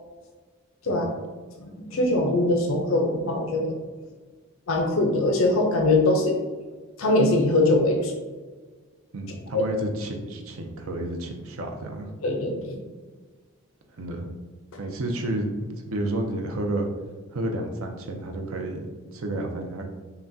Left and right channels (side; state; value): both; normal; correlation 0.25